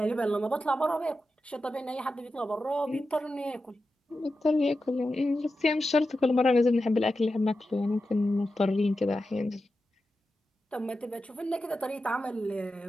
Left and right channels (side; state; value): both; normal; correlation 0.91